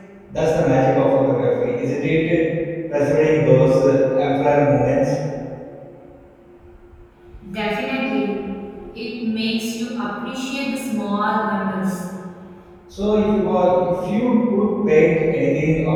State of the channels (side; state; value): both; identical; correlation 1.00